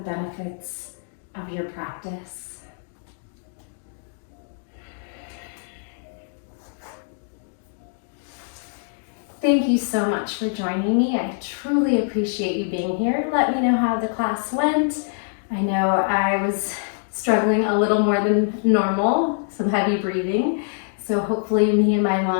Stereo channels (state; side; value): silent; right; digital silence